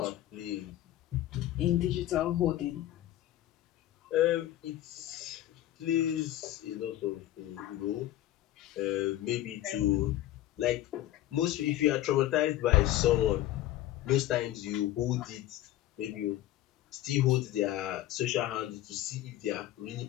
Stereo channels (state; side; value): quieter; right; 14.0 dB